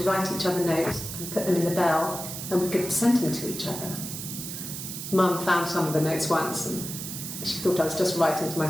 write each other notes and put them in the bell, and we could send them to each other. Mum found some of the notes once, and she thought I was just writing to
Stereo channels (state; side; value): noise; right; hiss, 7 dB below the sound